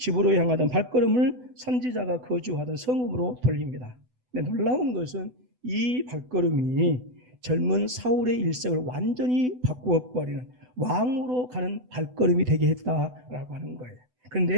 향하던 발걸음을 선지자가 거주하던 성읍으로 돌립니다. 근데 놀라운 것은 이 발걸음이 젊은 사울의 일생을 완전히 바꾸어 버리는 왕으로 가는 발걸음이 되게 했다라고 하는 거예요.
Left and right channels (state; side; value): late; left; 8.0 ms